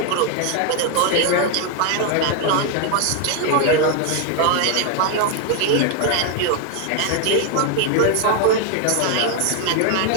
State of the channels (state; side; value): different; both; correlation 0.01